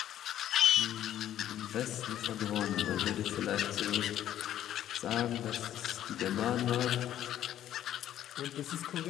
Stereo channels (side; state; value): right; quieter; 11.6 dB